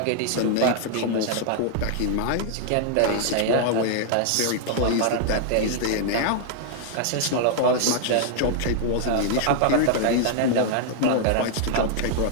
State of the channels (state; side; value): different; both; correlation -0.01